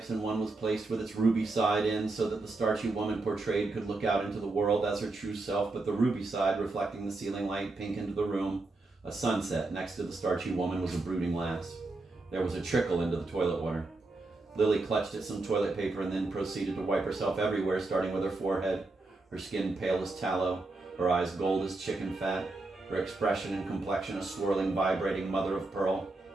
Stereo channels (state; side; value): quieter; left; 3.3 dB